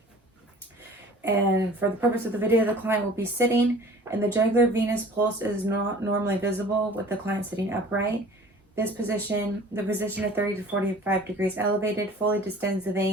And for the purpose of the video, the client will be sitting, and the jugular venous pulse is not normally visible with the client sitting upright. This position, the position of 30 to 45 degrees elevated, fully distends the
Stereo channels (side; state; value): both; normal; correlation 0.47